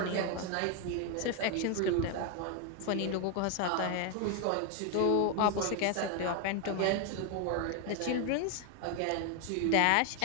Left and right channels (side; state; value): both; different; correlation 0.01